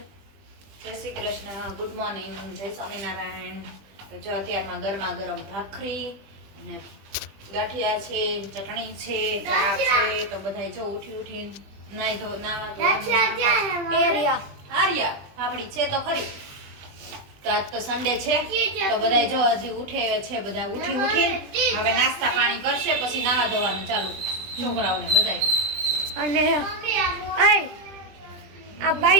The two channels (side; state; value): left; late; 20 ms